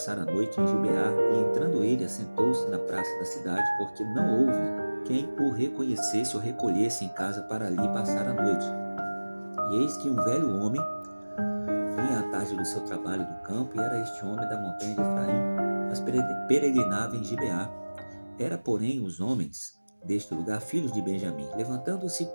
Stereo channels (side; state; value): both; inverted; correlation -1.00